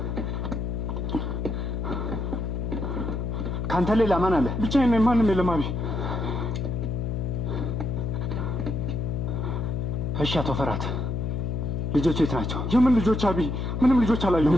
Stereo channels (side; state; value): left; noise; hum, 2 dB below the sound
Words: ካንተ ሌላ ማን አለ? ብቻዬን ነኝ፣ ማንም የለም። አቢ እሺ አቶ ፈራት ልጆቹ የት ናቸው? የምን ልጆች አቢ? ምንም ልጆች አላየሁም።